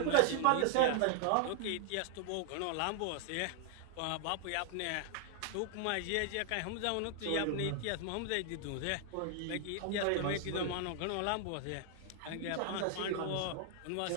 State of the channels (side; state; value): both; different; correlation 0.00